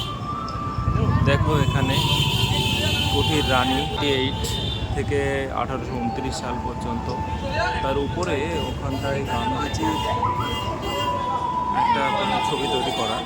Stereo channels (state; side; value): identical; both; correlation 1.00